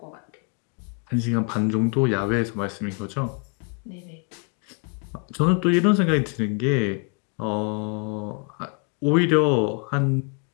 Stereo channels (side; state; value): right; quieter; 36.4 dB